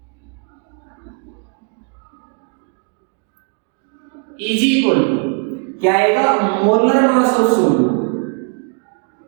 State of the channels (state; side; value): quieter; left; 38.3 dB